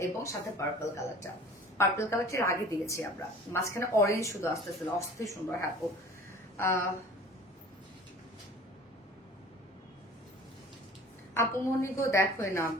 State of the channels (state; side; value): normal; both; correlation 0.45